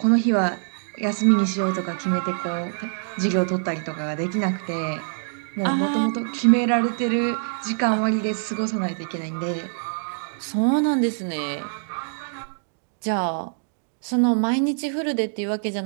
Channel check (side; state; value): left; silent; digital silence